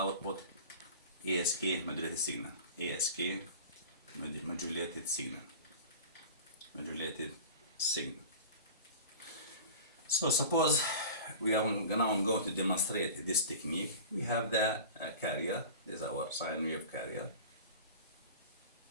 ASK modulated signal, modulated signal. So suppose we are now going to demonstrate this technique. We have the carrier. This is our sine wave carrier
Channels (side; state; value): both; inverted; correlation -0.36